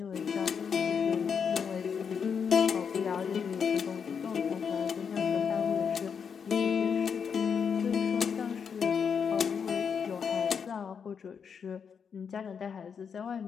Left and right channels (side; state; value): right; quieter; 6.7 dB